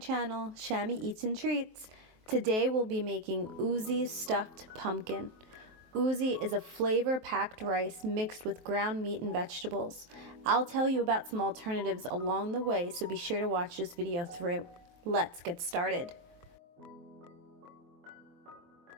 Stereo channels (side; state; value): left; late; 23 ms